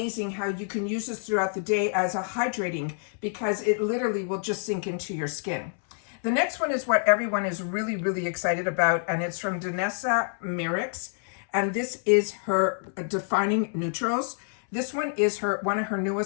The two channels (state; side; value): silent; right; 60 dB below the other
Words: how you can use this throughout the day as a hydrating, because it literally will just sink into your skin. The next one is what everyone is really, really excited about, and it's from Danessa Myricks. And this is her Defining Neutrals. This one is one of her